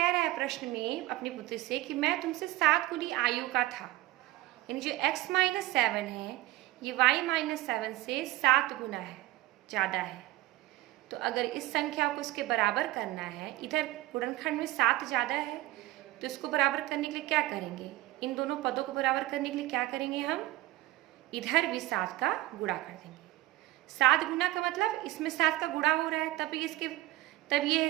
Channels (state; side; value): quieter; left; 17.6 dB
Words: रहा है प्रश्न में अपनी पुत्री से कि मैं तुमसे 7 गुनी आयु का था, यानी जो x माइनस 7 है ये y माइनस 7 से 7 गुना है, ज़्यादा है। तो अगर इस संख्या को इसके बराबर करना है, इधर गुणनखंड में 7 ज़्यादा है, तो इसको बराबर करने के लिए क्या करेंगे? इन दोनों पदों को बराबर करने के लिए क्या करेंगे? हम इधर भी 7 का गुणा कर देंगे। 7 गुना का मतलब इसमें 7 का गुणा हो रहा है, तब ये